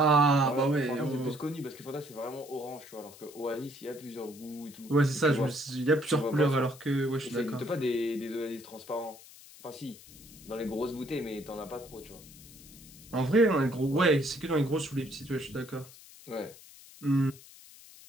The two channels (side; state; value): left; noise; hiss, 20 dB below the sound